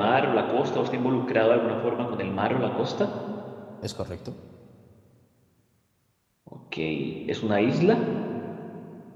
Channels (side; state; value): both; identical; correlation 1.00